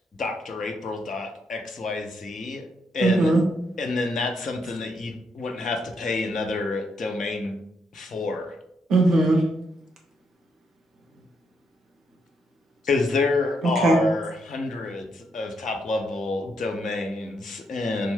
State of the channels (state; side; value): normal; both; correlation 0.78